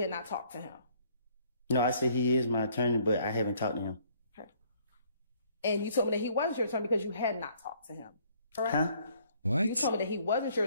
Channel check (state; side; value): inverted; both; correlation -0.63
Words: not talked to him. No, I said he is my attorney, but I haven't talked to him. Okay. And you told me that he wasn't your attorney because you had not talked to him, correct? Huh? What? You told me that he wasn't your